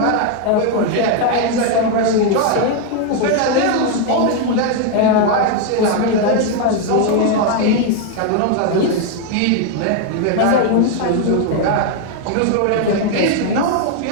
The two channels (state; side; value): different; both; correlation 0.01